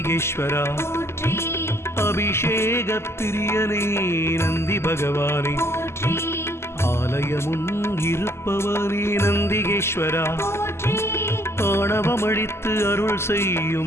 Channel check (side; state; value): right; late; 0.12 ms